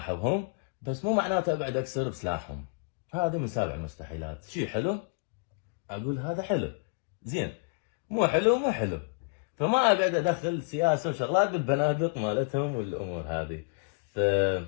بس مو معناته اقعد اكسر بسلاحهم. هذا من سابع المستحيلات. شيء حلو اقول هذا حلو زين، مو حلو مو حلو. فما اقعد ادخل سياسه وشغلات بالبنادق مالتهم والامور هذه. ف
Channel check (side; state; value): right; quieter; 34.9 dB